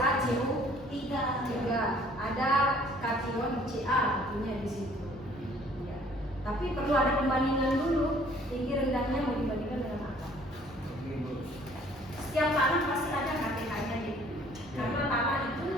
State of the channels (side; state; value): both; normal; correlation 0.57